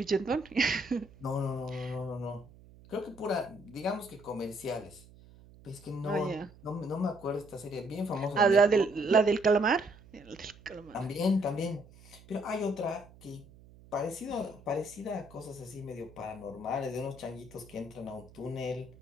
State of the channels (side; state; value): right; noise; hum, 22 dB below the sound